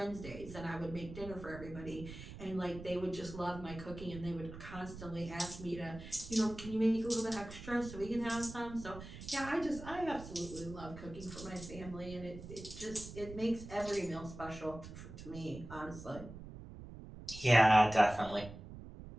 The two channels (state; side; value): noise; right; rumble, 13 dB below the sound